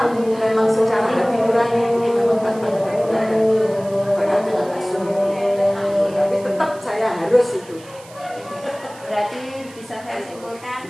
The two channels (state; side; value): noise; right; hiss, 22 dB below the sound